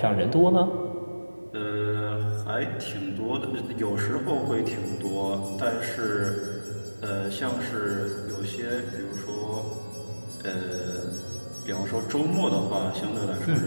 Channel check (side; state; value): both; inverted; correlation -1.00